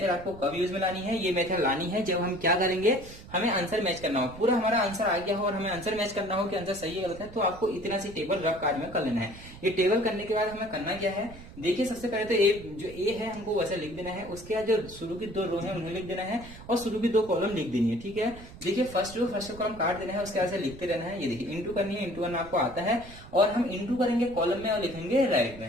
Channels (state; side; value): noise; right; rumble, 16 dB below the sound